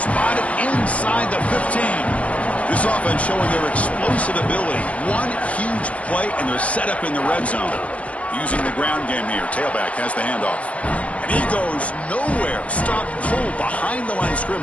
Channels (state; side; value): late; right; 0.065 ms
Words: inside the 15. This offense showing their explosive ability. One huge play, and they're set up in the red zone. Using the ground game here. Tailback has the handoff. And he goes nowhere. Stopped cold behind the line of